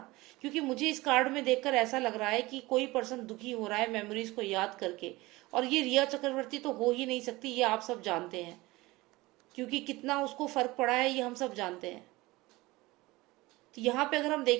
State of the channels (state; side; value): quieter; left; 20.7 dB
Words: क्योंकि मुझे इस कार्ड में देखकर ऐसा लग रहा है कि कोई पर्सन दुखी हो रहा है मेमोरीज को याद करके, और ये रिया चक्रवर्ती तो हो ही नहीं सकती, ये आप सब जानते हैं, क्योंकि कितना उसको फर्क पड़ा है ये हम सब जानते हैं। तो यहाँ पे अगर हम